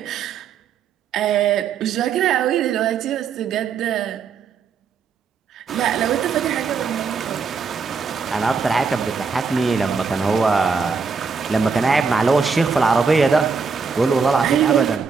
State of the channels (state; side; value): quieter; left; 5.4 dB